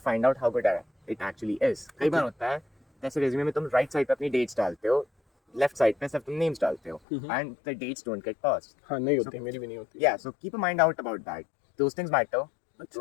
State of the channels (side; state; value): right; drops out; at 7.0 s